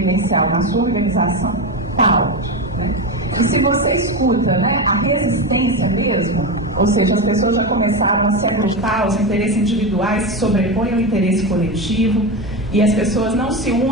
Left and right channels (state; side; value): normal; both; correlation 0.17